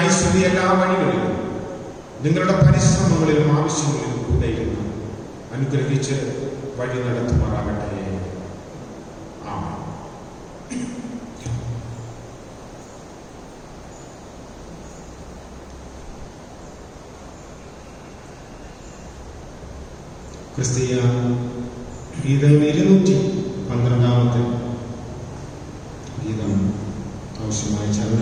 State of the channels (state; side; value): identical; both; correlation 1.00